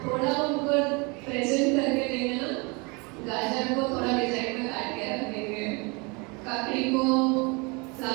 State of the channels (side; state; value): left; quieter; 29.4 dB